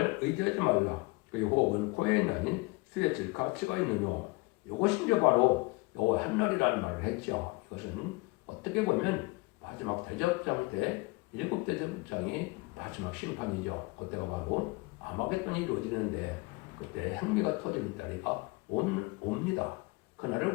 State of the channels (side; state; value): right; quieter; 25.0 dB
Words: 의지하지 말라. 그의 호흡은 코에 있나니 수에 가치가 있느뇨. 이것이 이제 바로 여호와 한 날이라는 말을 했죠. 이것은 어떻게 보면 마지막 대접장 때 7대접장이 마지막 심판이죠. 그때가 바로 아마겟돈이 이루어지는데 그때 행미가 터지는 날이가 옵니다. 그날을